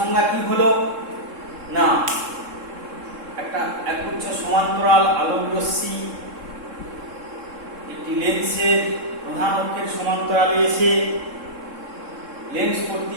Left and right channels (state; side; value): late; left; 3.7 ms